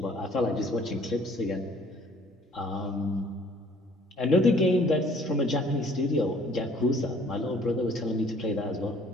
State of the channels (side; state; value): both; normal; correlation 0.56